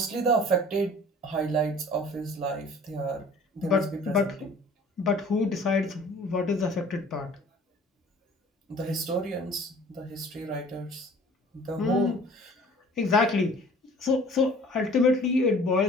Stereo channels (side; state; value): both; normal; correlation 0.49